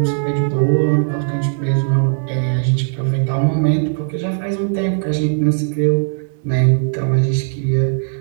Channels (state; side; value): silent; left; digital silence